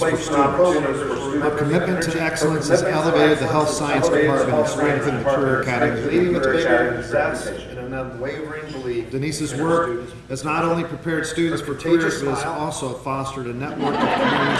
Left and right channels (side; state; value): both; identical; correlation 1.00